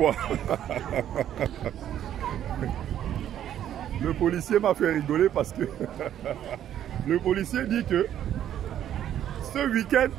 Le policier m'a fait rigoler parce que le policier dit que ce week-end,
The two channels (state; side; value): quieter; left; 10.8 dB